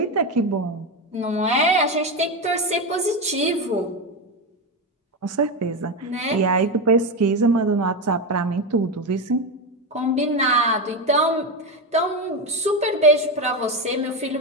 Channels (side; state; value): both; normal; correlation 0.14